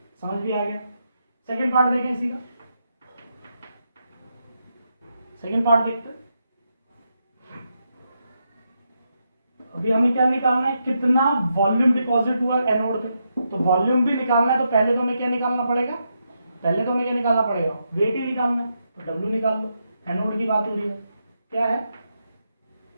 समझ भी आ गया। सेकंड पार्ट देखें इसी का, सेकंड पार्ट देखते हैं। अभी हमें क्या निकालना है, कितना वॉल्यूम डिपॉजिट हुआ एनोड पे, तो वॉल्यूम भी निकालना है तो पहले तो हमें क्या निकालना पड़ेगा, वेट ही निकालना है, तो W निकाल लो, एनोड की बात हो रही है, क्या है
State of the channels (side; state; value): both; inverted; correlation -0.82